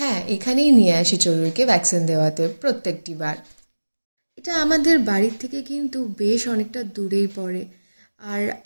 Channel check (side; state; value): both; inverted; correlation -1.00